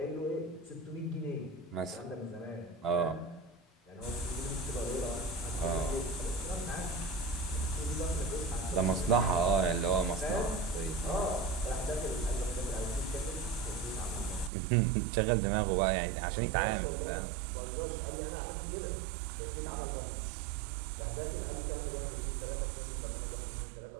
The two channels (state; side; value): drops out; left; at 14.5 s